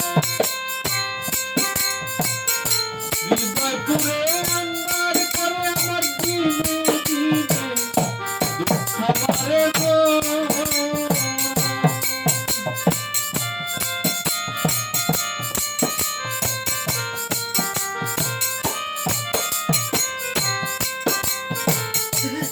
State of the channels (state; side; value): identical; both; correlation 1.00